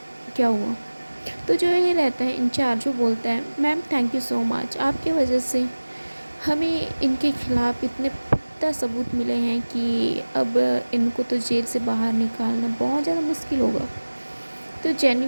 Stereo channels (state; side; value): inverted; both; correlation -1.00